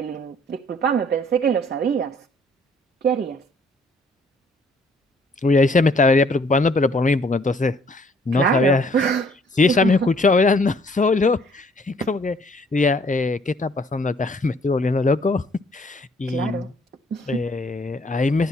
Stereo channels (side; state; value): both; normal; correlation 0.61